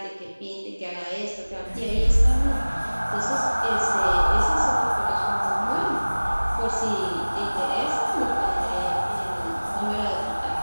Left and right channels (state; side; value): inverted; both; correlation -1.00